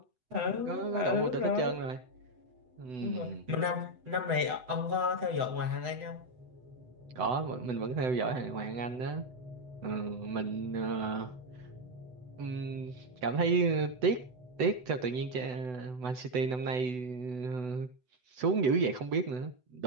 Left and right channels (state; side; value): late; left; 8.0 ms